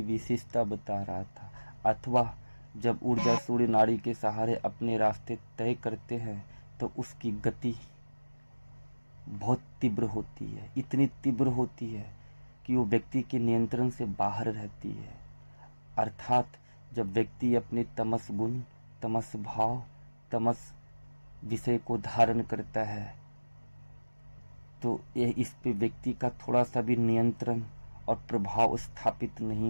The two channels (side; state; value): both; inverted; correlation -1.00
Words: विशेषता बता रहा था, अथवा जब ऊर्जा सूर्य नाड़ी के सहारे अपने रास्ते तय करते हैं तो उसकी गति बहुत तीव्र होती है, इतनी तीव्र होती है कि वो व्यक्ति के नियंत्रण से बाहर रहती है। अर्थात जब व्यक्ति अपने तमस गुण, तमस भाव, तमस विषय को धारण करता है तो यह इस पे व्यक्ति का थोड़ा सा भी नियंत्रण और प्रभाव स्थापित